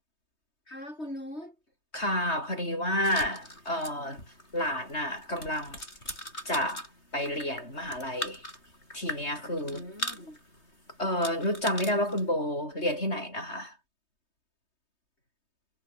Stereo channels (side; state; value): right; late; 3.2 ms